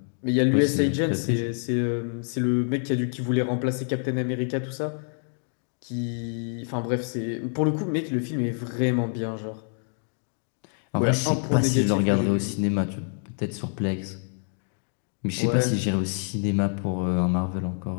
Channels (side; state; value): right; silent; 57 dB below the other